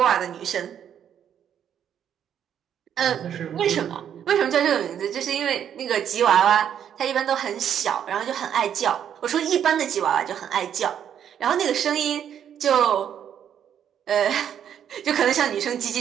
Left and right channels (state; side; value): quieter; left; 9.1 dB